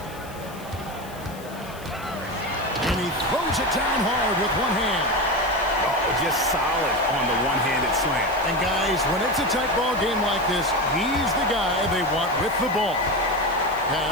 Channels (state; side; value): noise; left; hiss, 20 dB below the sound